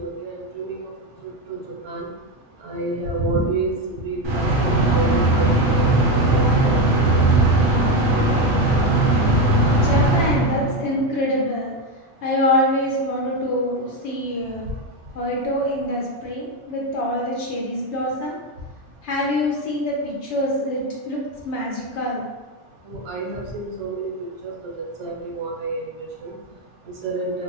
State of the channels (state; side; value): normal; both; correlation 0.11